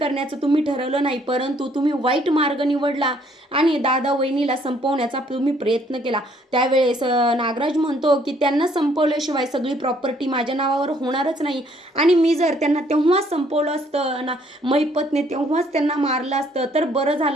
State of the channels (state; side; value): normal; both; correlation 0.65